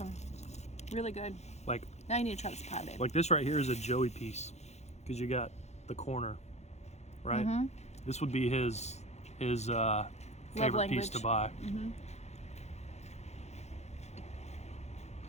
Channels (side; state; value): right; late; 0.32 ms